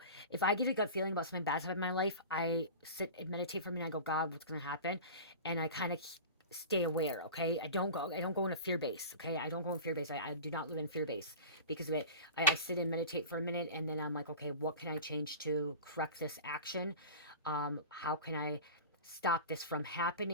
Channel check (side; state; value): both; inverted; correlation -0.33